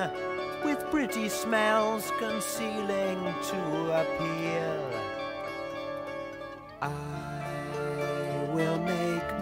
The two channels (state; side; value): identical; both; correlation 1.00